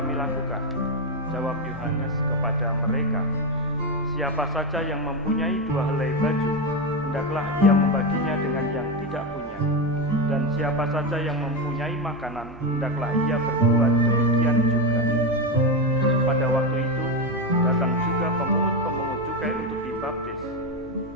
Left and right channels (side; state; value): both; normal; correlation 0.12